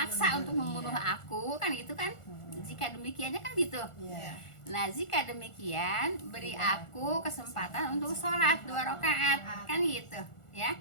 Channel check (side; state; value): right; late; 1.4 ms